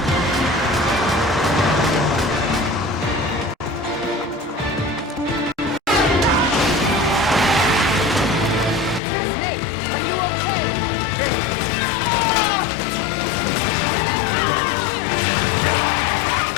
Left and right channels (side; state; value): right; drops out; at 9.0 s